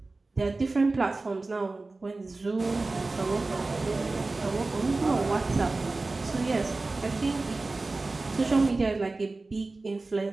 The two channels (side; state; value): left; quieter; 3.4 dB